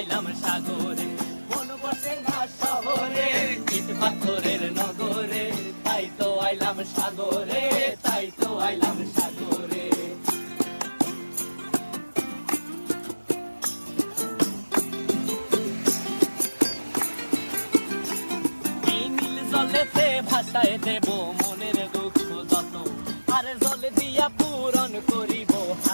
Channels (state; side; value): inverted; both; correlation -1.00